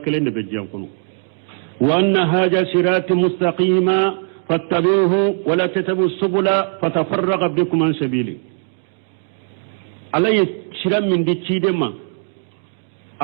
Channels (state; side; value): silent; left; 66 dB below the other